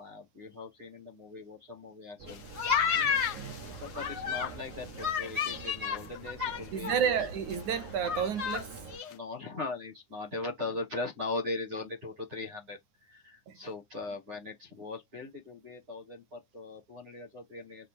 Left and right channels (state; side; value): late; left; 9.6 ms